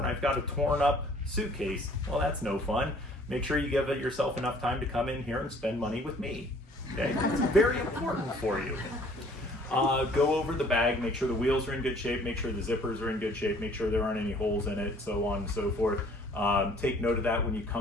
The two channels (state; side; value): normal; both; correlation 0.56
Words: I've got a torn up suitcase. Well, that's no fun. Make sure you give yourself enough time to come in here and spend money with me. Okay, it's very important for you. Go over the bag, make sure the wheels are in good shape, make sure the zippers are in good shape, make sure there aren't any holes in it, so on and so forth. Take note of that when you